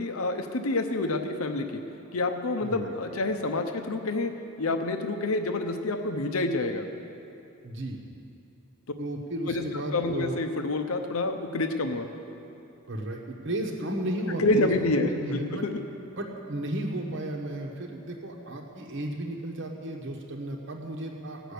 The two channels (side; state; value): both; normal; correlation 0.10